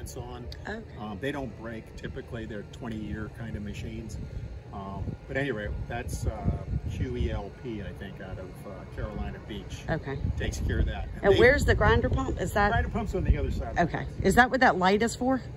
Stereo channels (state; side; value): identical; both; correlation 1.00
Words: on. Okay. They don't break. Typically, they're 20-year kind of machines. But anyway, that's QELP, I think, out of Carolina Beach. Okay. Takes care of that. And where's the grinder pump? Is that? The grinder pump's on the other side. Okay. Is that what that light is for?